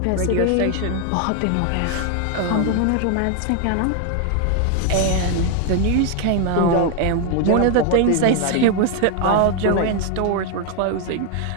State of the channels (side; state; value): both; different; correlation 0.01